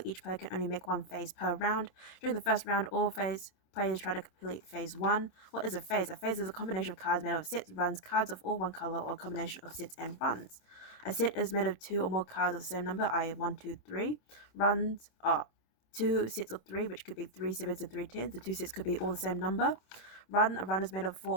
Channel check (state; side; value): late; right; 26 ms